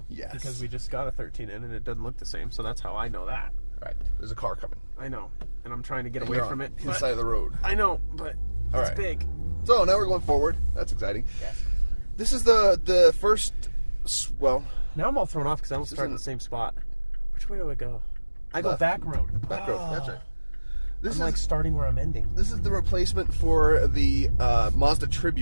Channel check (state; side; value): inverted; both; correlation -1.00